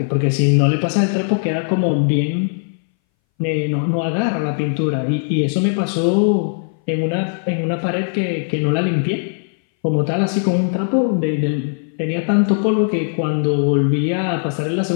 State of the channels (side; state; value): right; silent; 62 dB below the other